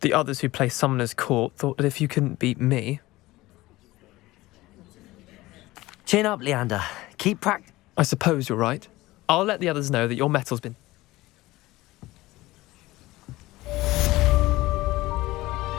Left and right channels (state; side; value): quieter; right; 18.7 dB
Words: The others who play Summoner's Court thought that if you couldn't beat me... Chin up, Leander. Keep practicing. I suppose you're right. I'll let the others know that your metal's been...